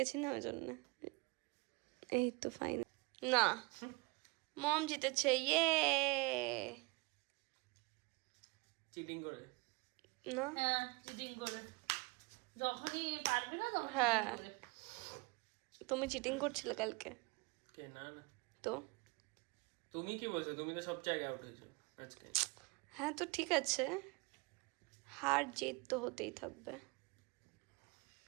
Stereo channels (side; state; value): left; quieter; 26.6 dB